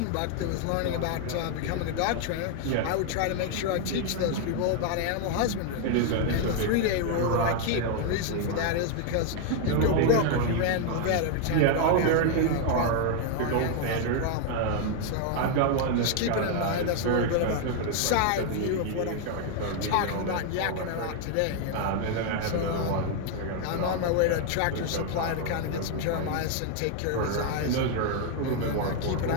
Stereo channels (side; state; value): both; different; correlation 0.00